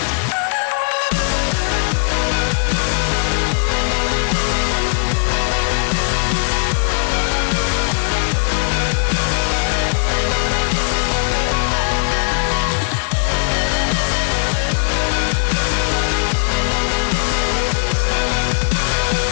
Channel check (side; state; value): right; silent; digital silence